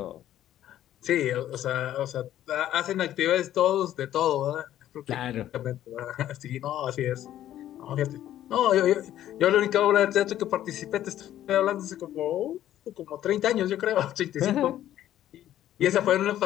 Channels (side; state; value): right; quieter; 12.3 dB